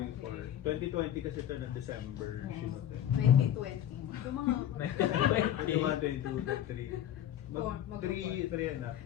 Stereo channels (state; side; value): quieter; right; 10.9 dB